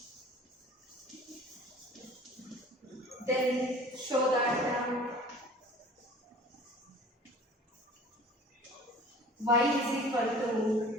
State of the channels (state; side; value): normal; both; correlation 0.45